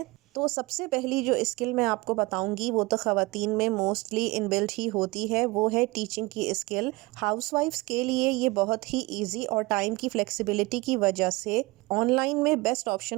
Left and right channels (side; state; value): left; quieter; 23.2 dB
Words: تو سب سے پہلی جو اسکل میں آپ کو بتاؤں گی وہ تو خواتین میں موسٹلی ان بلٹ ہی ہوتی ہے، وہ ہے ٹیچنگ کی اسکل۔ ہاؤس وائفس کے لیے یہ بہت ہی ایزی اور ٹائم کی فلیکسیبلٹی کی وجہ سے آن لائن میں بیسٹ